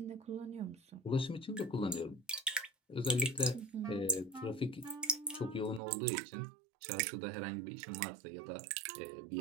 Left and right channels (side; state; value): left; drops out; at 5.8 s